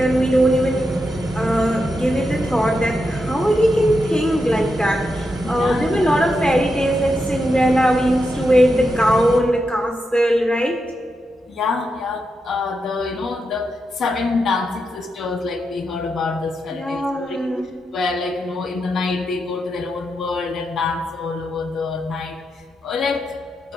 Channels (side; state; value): both; normal; correlation 0.86